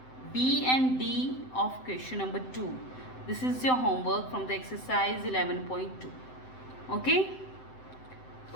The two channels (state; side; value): late; right; 7.8 ms